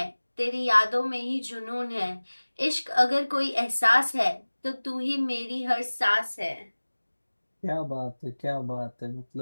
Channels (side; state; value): both; inverted; correlation -1.00